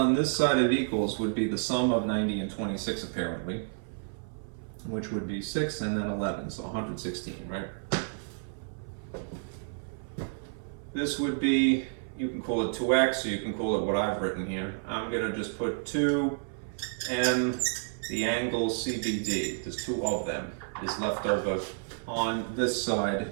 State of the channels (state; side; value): silent; left; 57 dB below the other